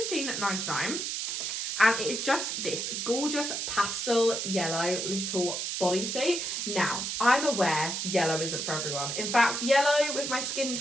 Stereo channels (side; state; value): right; noise; hiss, 2 dB below the sound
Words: And it is just this gorgeous pastel yellow little bodysuit. Now, I'm aware yellow isn't for everyone. In fact, yellow with my skin